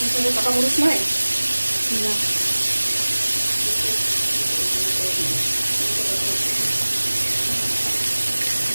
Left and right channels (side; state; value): both; inverted; correlation -1.00